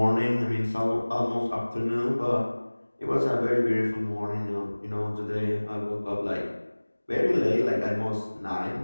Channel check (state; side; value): inverted; both; correlation -1.00